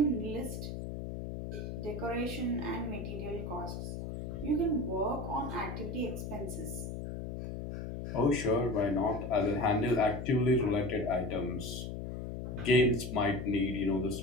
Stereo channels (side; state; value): left; noise; hum, 6 dB below the sound